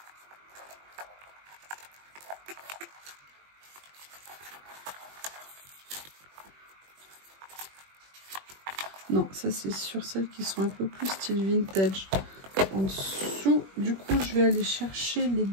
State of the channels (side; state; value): left; late; 21 ms